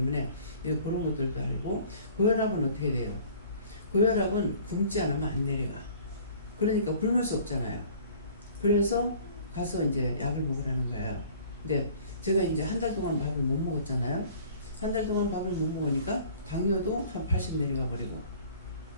그런 것들도 알고, 고혈압은 어떻게 돼요? 고혈압은 굶지 않으면 안 내려가. 그러니까 굶을 수 없잖아요. 그래서 가서 이제 약을 먹으라는 거예요. 근데 제가 이제 한 달 동안 밥을 못 먹었잖아요. 한 달 동안 밥을 못 먹으니까 당뇨도 한 80 내려가 버리고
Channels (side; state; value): both; inverted; correlation -0.50